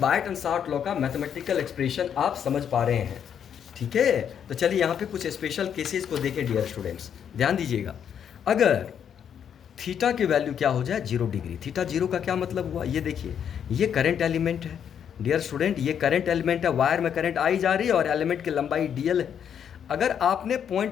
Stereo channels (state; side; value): quieter; right; 8.4 dB